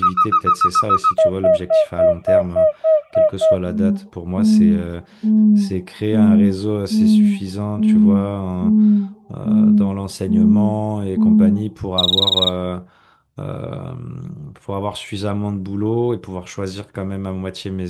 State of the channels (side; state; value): both; identical; correlation 1.00